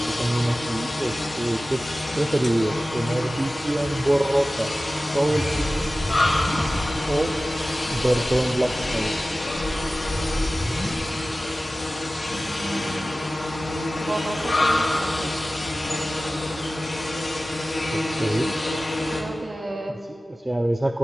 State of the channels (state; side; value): normal; both; correlation 0.96